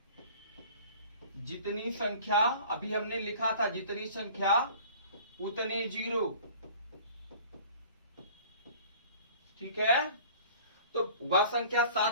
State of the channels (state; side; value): inverted; both; correlation -0.46